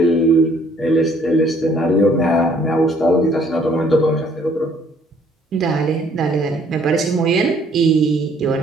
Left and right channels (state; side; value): normal; both; correlation 0.61